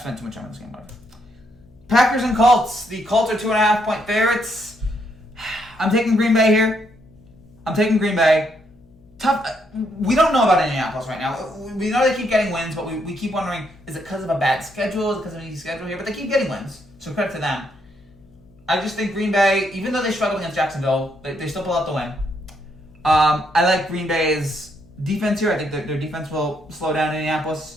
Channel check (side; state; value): left; noise; hum, 27 dB below the sound